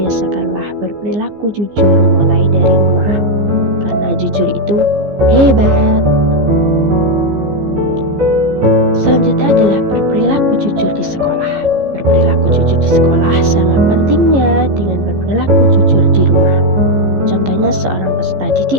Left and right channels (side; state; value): left; late; 15 ms